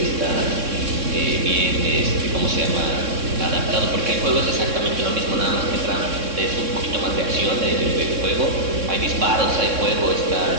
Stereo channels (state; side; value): late; left; 3.6 ms